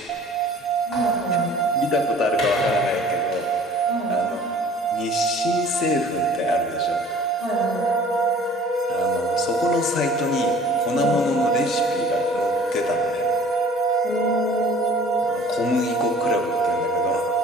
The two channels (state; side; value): normal; both; correlation 0.49